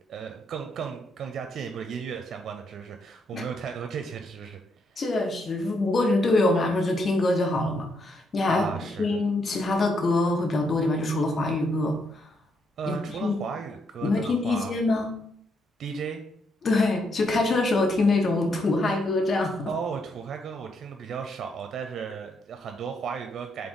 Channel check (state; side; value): normal; both; correlation 0.76